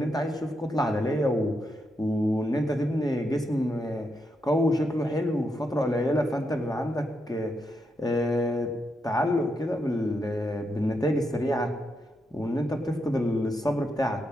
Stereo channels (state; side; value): normal; both; correlation 0.82